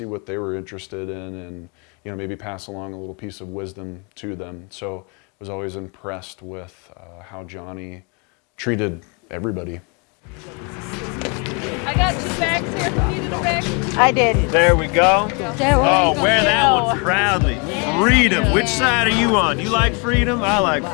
what they were interested in, and, you know, maybe pass along a little piece of wisdom to them. So I was always impressed with how Johnny treated everybody. I got 2 bags here. Who needed a bag? I did. There we go. There we Oh, go. wear that one proudly. Freedom. Which side are you on? You like freedom? I like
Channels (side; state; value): right; quieter; 33.2 dB